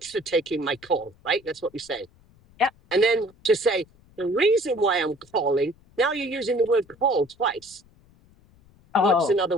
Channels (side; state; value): left; noise; rumble, 29 dB below the sound